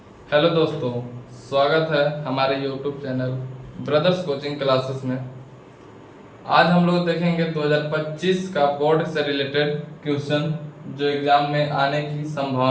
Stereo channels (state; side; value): identical; both; correlation 1.00